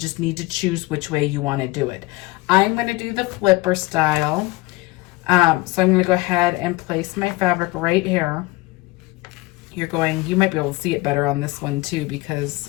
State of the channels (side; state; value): right; quieter; 22.0 dB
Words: need to choose which way you want to do it. I'm going to do the flipper style. So I'm going to go ahead and place my fabric right here. You might be able to see it better on this one too